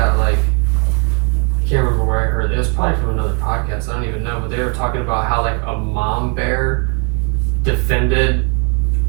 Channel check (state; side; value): quieter; left; 35.2 dB